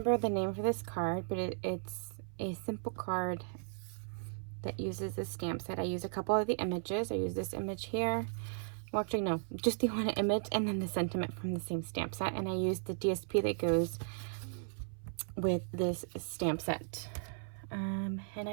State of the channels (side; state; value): left; silent; 54 dB below the other